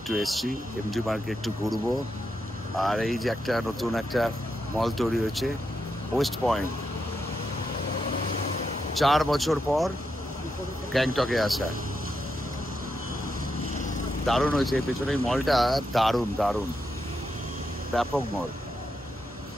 এসছি এমজি মার্গে একটু ঘুরবো। আর এই যে একটা নতুন একটা মল তৈরি হয়েছে ওয়েস্ট পয়েন্ট, 4 বছর পর গ্যাংটকে আসা, দারুণ হয়েছে। পেছনে এই মলটা দারুণ দারুণ, ব্যাপক মল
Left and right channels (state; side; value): normal; both; correlation 0.84